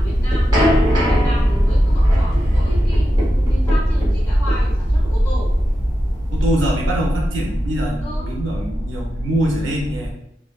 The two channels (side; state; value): both; normal; correlation 0.90